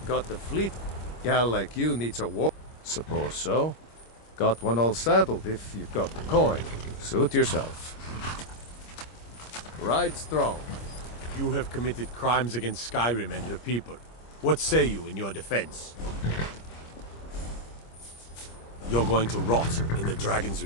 Got the fleet. Gal like you needs a war. Suppose so. Got one all saddled if you've got the coin. Suit yourself. Ride strong. You have committed crimes against Skyrim and her people. What say you in your defense? You're going to rot in the Dragon's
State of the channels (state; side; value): late; right; 25 ms